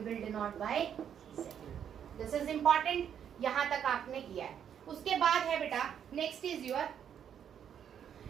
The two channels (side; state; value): left; quieter; 8.7 dB